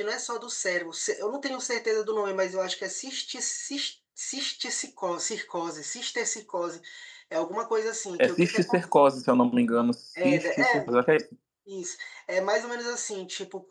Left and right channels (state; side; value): identical; both; correlation 1.00